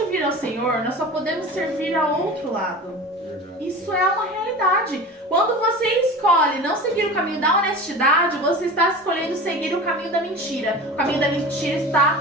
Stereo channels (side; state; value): both; normal; correlation 0.34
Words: ao Senhor, nós só podemos servir ao outro lado. Isso é uma realidade. imoralidade. Quando você escolhe não seguir o caminho da honestidade, você está escolhendo seguir o caminho da mentira. O caminho da mentira está